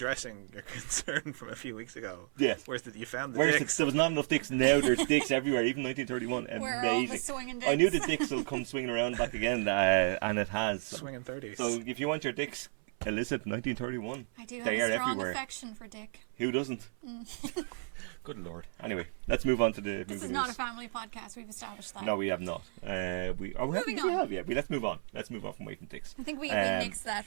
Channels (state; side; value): silent; left; 56 dB below the other